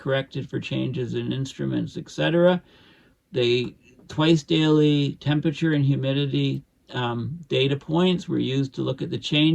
for changes in instruments, etc. They twice daily temperature and humidity data points were used to look at the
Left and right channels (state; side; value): identical; both; correlation 1.00